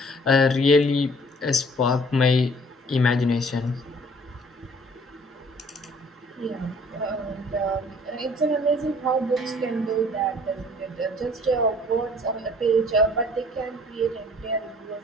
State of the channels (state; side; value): normal; both; correlation 0.55